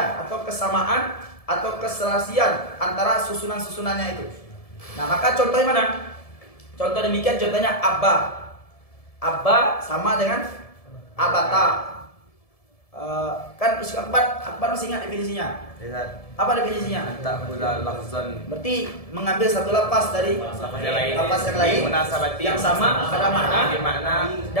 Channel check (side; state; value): right; late; 1.7 ms